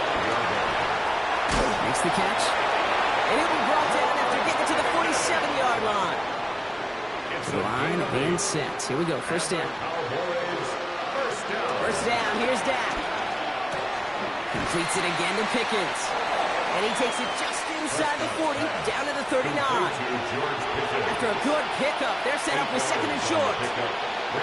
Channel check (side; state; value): both; identical; correlation 1.00